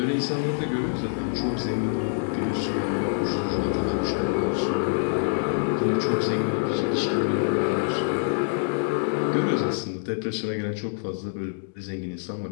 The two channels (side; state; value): right; silent; digital silence